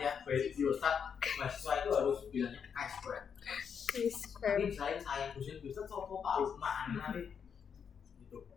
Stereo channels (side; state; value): right; quieter; 7.1 dB